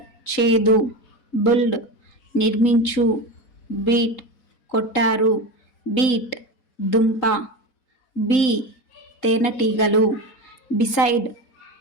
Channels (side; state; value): right; late; 3.8 ms